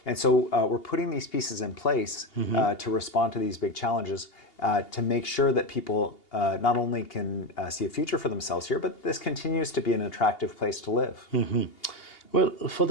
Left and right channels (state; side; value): late; right; 2.8 ms